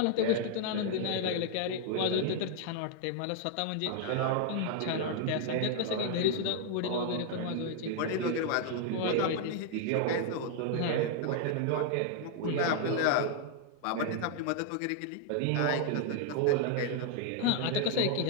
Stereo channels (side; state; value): both; different; correlation 0.00